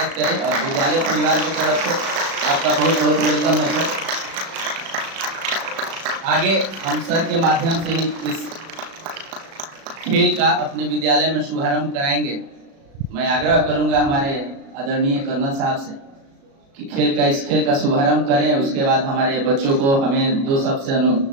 करें और विद्यालय परिवार की तरफ से आपका बहुत बहुत वेलकम है सर। आगे हम सर के माध्यम से ही इस खेल का अपने विद्यालय में शुभारंभ कराएंगे। मैं आग्रह करूंगा हमारे आदरणीय कर्नल साहब से कि इस खेल का शुभारंभ करें। उसके बाद हमारे बच्चों को हमें दो शब्द से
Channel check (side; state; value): left; late; 36 ms